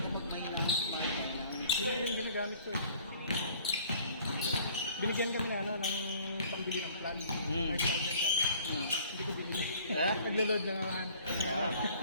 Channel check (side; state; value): both; inverted; correlation -0.53